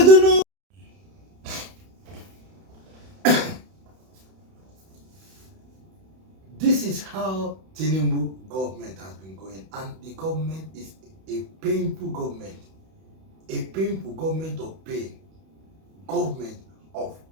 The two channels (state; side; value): late; left; 31 ms